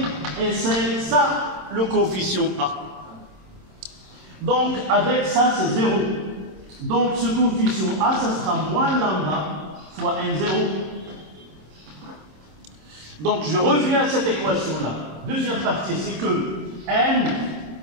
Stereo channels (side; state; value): left; late; 26 ms